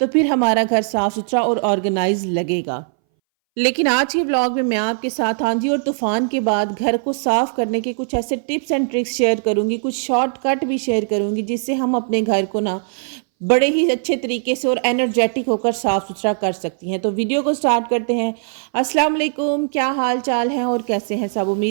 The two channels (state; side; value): silent; left; 62 dB below the other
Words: फिर हमारा घर साफ सुथरा और ऑर्गेनाइज लगेगा। लेकिन आज के ब्लॉग में मैं आपके साथ आंधी और तूफान के बाद घर को साफ करने के कुछ ऐसे टिप्स एंड ट्रिक्स शेयर करूंगी, कुछ शॉर्टकट भी शेयर करूंगी जिससे हम अपने घर को ना बड़े ही अच्छे तरीके से और एनर्जेटिक होकर साफ सुथरा कर सकती हैं। तो वीडियो को स्टार्ट करते हैं। अस्सलाम वालेकुम, क्या हाल चाल है और कैसे हैं सब?